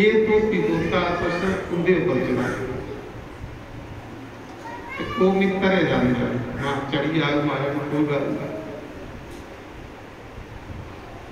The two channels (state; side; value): identical; both; correlation 1.00